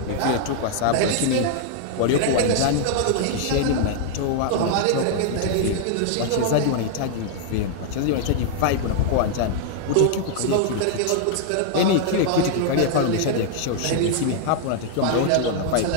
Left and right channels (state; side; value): different; both; correlation 0.00